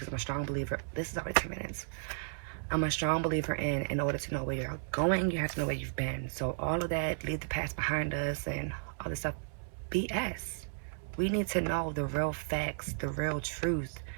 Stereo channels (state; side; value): silent; left; digital silence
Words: I'm a strong believer. This is already 10 minutes. I'm a strong believer in order to know where you're going, you have to know where you've been. So all of that, leave the past behind us and all this stuff, BS. We need to know the real facts, the real truth